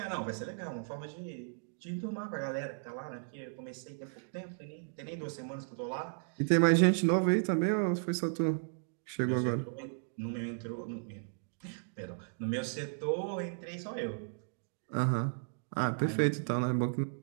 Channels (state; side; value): silent; left; digital silence